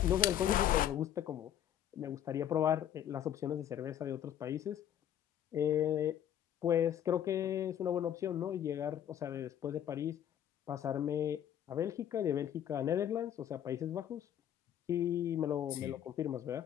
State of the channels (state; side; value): quieter; right; 10.4 dB